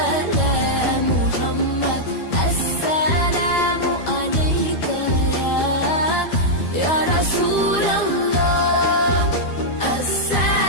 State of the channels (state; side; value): late; right; 12 ms